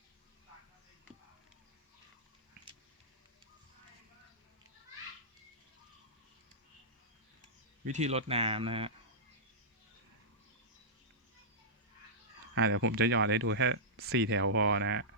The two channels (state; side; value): normal; both; correlation -0.14